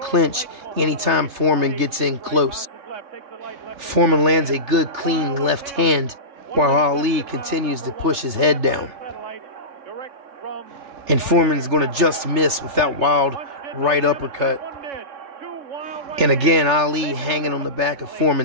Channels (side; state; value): left; late; 3.3 ms